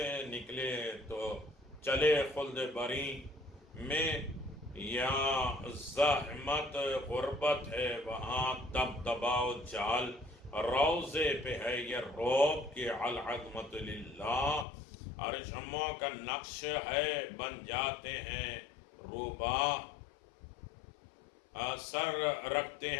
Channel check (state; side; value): drops out; right; at 14.7 s